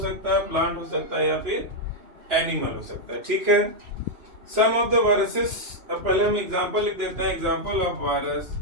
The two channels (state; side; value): late; left; 2.9 ms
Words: है, प्लांट हो सकता है या फिर एनिमल हो सकता है। ठीक है, सम ऑफ द वायरसेस। अब पहले हम एग्जांपल लिख देते हैं। एग्जांपल ऑफ वायरस,